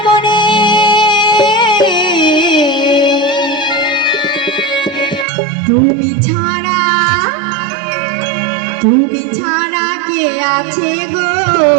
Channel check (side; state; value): left; drops out; at 5.2 s